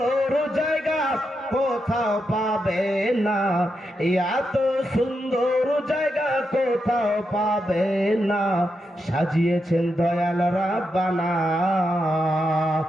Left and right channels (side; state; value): both; normal; correlation 0.85